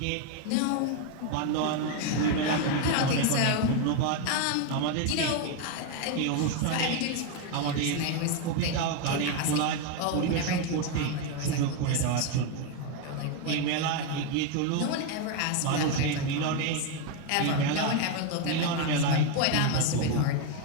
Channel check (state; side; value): different; both; correlation 0.02